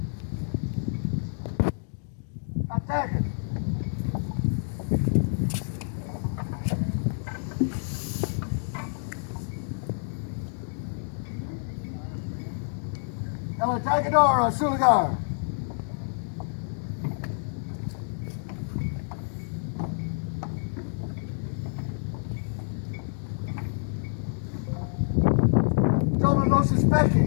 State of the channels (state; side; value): silent; right; digital silence